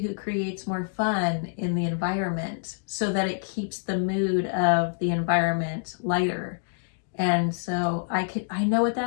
creates more fun in the environment so that it keeps the mood of the environment lighter. And so I know what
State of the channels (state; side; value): silent; right; digital silence